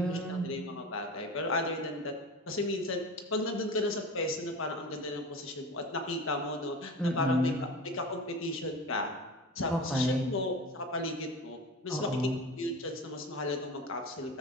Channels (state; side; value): normal; both; correlation 0.31